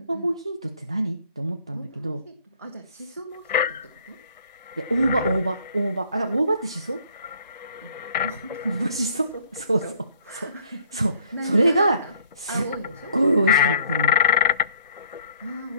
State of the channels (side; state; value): both; inverted; correlation -0.59